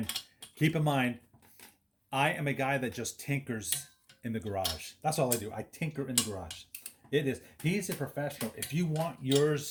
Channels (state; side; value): identical; both; correlation 1.00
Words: keep in mind, I am a guy that just tinkers in the garage. That's all I do. I tinker in the garage. He's a professional. If you want